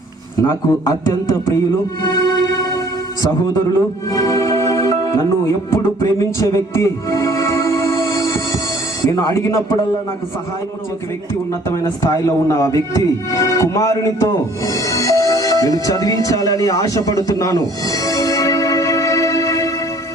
నాకు అత్యంత ప్రియులు, సహోదరులు, నన్ను ఎప్పుడు ప్రేమించే వ్యక్తి, నేను అడిగినప్పుడల్లా నాకు సహాయం చేసే వ్యక్తి, ఉన్నతమైన స్థాయిలో ఉన్న ఆ వ్యక్తి కుమారునితో నేను చదివించాలని ఆశపడుతున్నాను.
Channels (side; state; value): both; normal; correlation 0.56